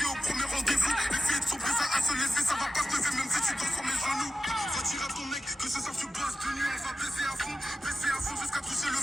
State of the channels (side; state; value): both; normal; correlation 0.93